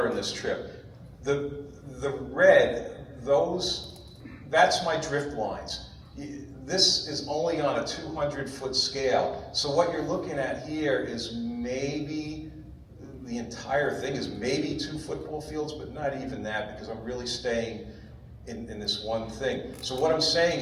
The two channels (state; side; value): identical; both; correlation 1.00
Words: in this trip. The red, that's my drift lines. This is only on a 200-foot scale. So what you're looking at here is maybe, the entire thing is maybe 2 football fields, but not even that, because I'm really staying in this one thing. So what I'm